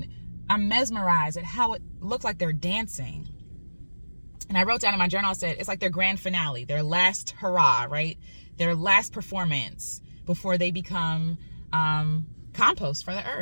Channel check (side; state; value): both; inverted; correlation -1.00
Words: I'm mesmerized at how it looks like they're dancing. And I wrote down in my journal, I said, it's like their grand finale, their last hurrah, right? Their last performance before they become compost for the